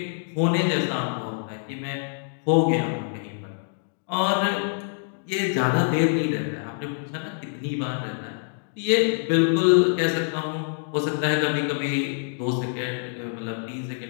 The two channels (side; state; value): right; silent; digital silence